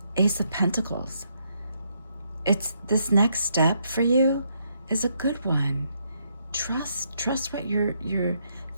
Ace of Pentacles. It's this next step for you is a good one. Trust what you're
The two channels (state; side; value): inverted; both; correlation -0.76